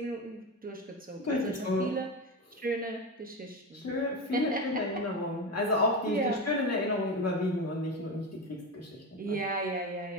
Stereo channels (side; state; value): both; normal; correlation 0.20